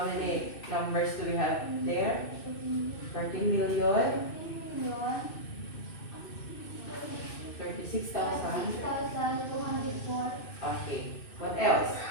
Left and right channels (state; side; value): late; right; 2.6 ms